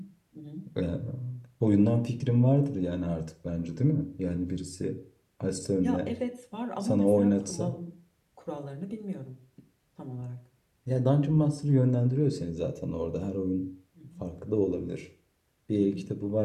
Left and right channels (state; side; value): identical; both; correlation 1.00